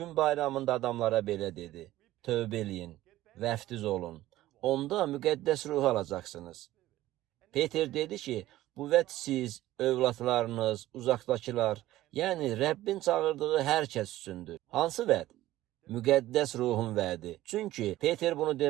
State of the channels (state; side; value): quieter; left; 15.4 dB